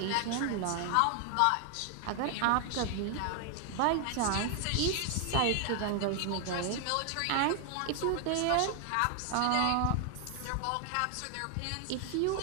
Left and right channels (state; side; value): different; both; correlation 0.00